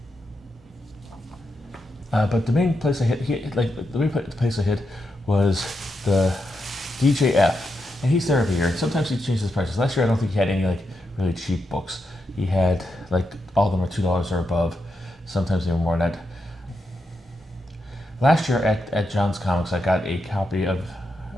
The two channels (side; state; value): both; normal; correlation 0.85